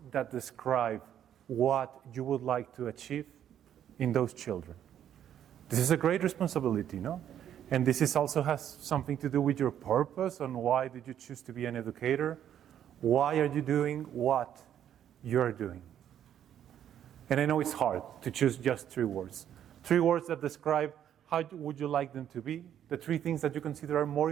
that describe what you would like to achieve in those children. This is a great responsibility, no? And this is also has something to do with your purpose on why did you choose to be an educator? Why are you doing what you're doing? And I know it's hard to choose just 3 words. 3 words that describe how would you like them to be, the 3 things that you consider are more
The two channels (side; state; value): left; quieter; 10.1 dB